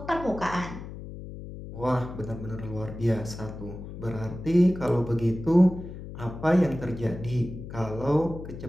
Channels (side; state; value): left; noise; hum, 11 dB below the sound